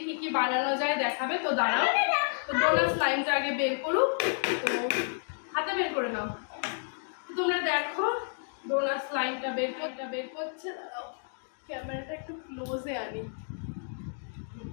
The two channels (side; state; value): right; silent; digital silence